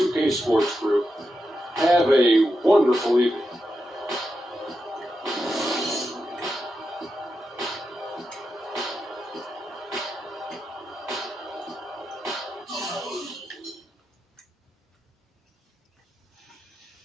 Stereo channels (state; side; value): normal; both; correlation 0.87